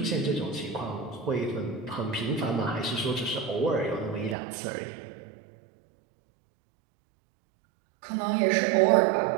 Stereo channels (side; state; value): left; drops out; at 4.4 s